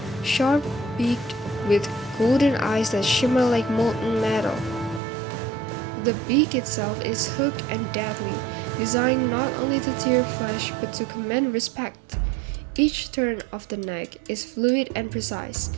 sharp-beaked with golden eyes that shimmer like molten metal. The beak itself is hooked and deadly, designed not only to tear flesh but to command respect. Each turn of the neck is fluid and precise,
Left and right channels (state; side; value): drops out; left; at 5.0 s